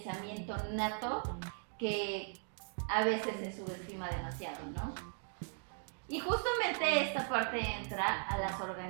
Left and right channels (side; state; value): left; silent; 52 dB below the other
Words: nato que a veces se subestima demasiado, ¿no? Y justamente esta parte entra a las